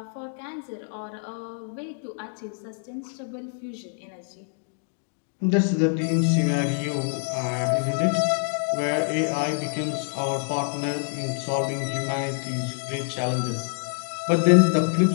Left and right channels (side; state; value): right; silent; 61 dB below the other